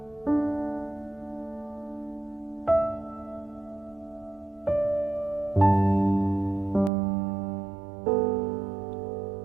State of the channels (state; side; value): drops out; left; at 6.9 s